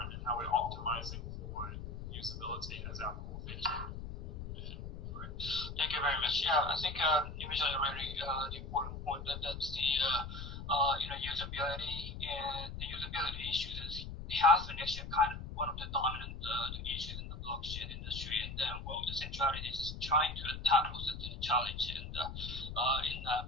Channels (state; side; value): noise; left; rumble, 8 dB below the sound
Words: and how we're optimizing for usability as our core feature. Thank you very much. Yeah, I think you mentioned a really important point that's the usability, and the usability issues has been actually kind of one of the dominant issues in the blockchain industry, and then the centrality is trying to tackle such a challenge and